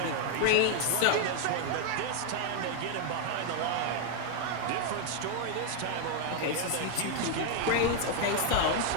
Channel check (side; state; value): both; different; correlation 0.00